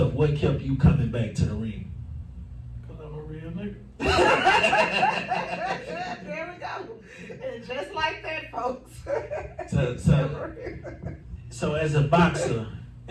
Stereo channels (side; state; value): both; identical; correlation 1.00